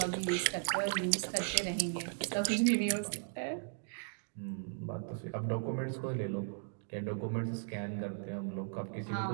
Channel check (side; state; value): left; silent; digital silence